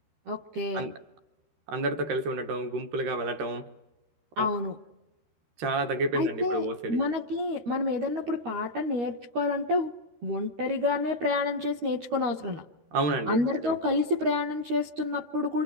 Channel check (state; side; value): late; left; 13 ms